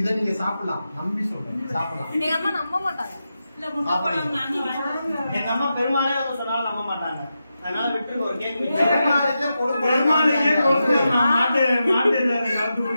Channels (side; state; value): both; inverted; correlation -0.89